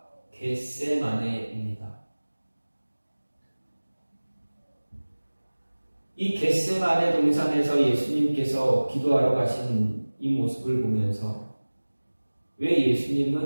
겟세마네입니다. 이 겟세마네 동산에서 예수님께서 기도하러 가신 이 모습을 보면서 왜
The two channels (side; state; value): both; inverted; correlation -1.00